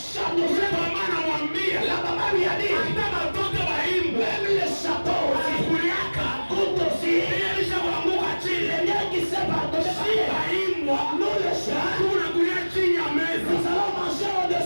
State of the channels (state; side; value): inverted; both; correlation -1.00